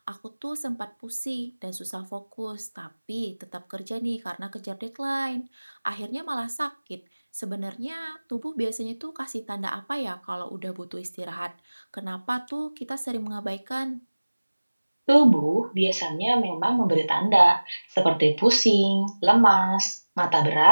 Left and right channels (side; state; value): both; inverted; correlation -1.00